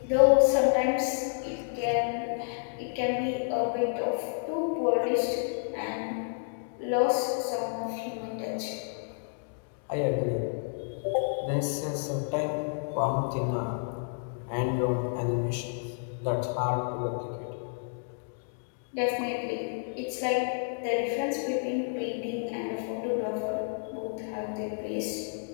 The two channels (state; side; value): silent; right; digital silence